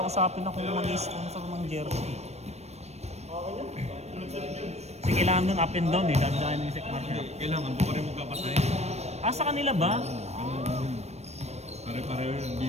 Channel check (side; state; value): left; late; 0.31 ms